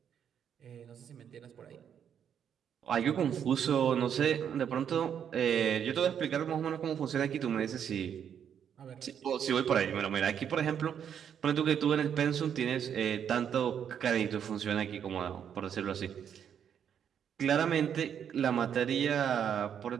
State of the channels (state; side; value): quieter; left; 8.5 dB